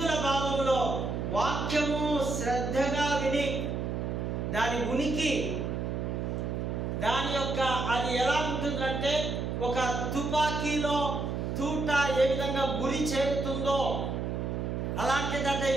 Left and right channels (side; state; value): right; noise; hum, 2 dB below the sound